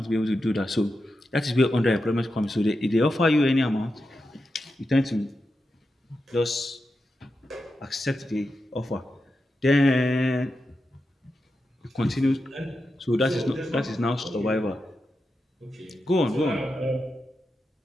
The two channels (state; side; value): normal; both; correlation 0.89